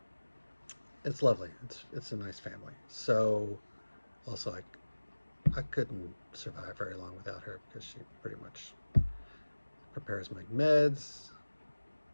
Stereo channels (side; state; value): both; inverted; correlation -1.00